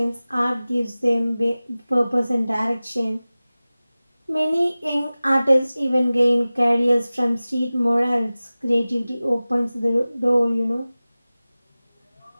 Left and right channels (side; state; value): both; inverted; correlation -0.97